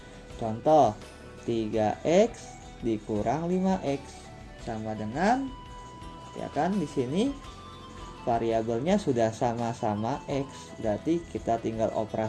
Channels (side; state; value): both; identical; correlation 1.00